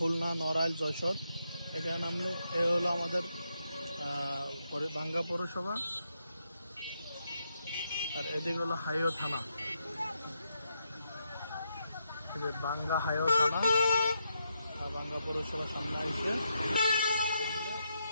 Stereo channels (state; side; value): inverted; both; correlation -0.81